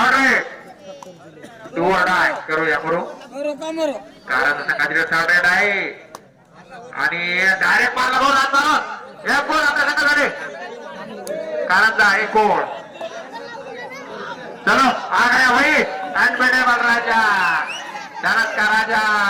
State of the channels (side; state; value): both; identical; correlation 1.00